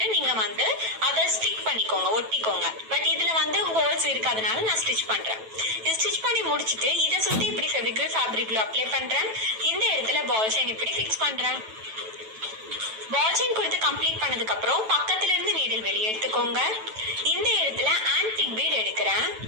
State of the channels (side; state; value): left; late; 9.1 ms